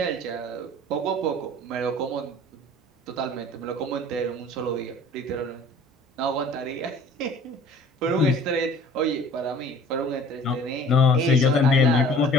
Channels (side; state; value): both; normal; correlation 0.49